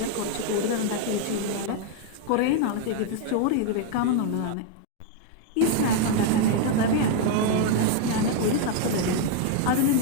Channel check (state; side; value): different; both; correlation 0.00